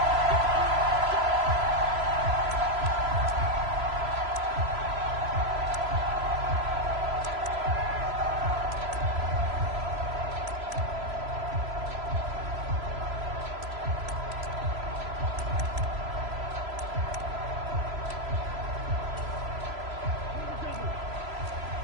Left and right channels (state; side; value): late; left; 3.0 ms